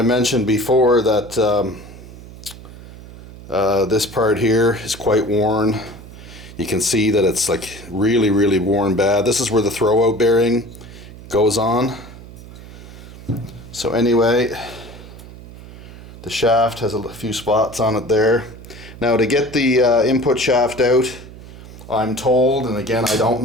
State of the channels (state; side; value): noise; right; hum, 16 dB below the sound